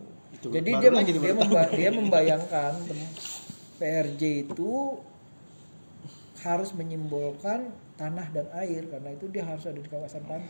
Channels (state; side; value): inverted; both; correlation -1.00